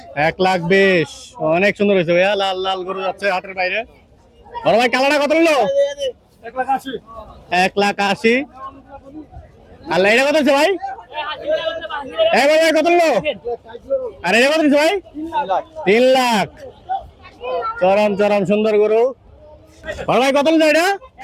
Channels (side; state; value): both; identical; correlation 1.00